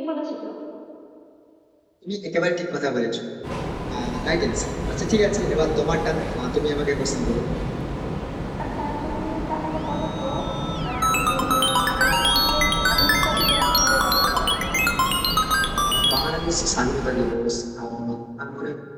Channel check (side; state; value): both; identical; correlation 1.00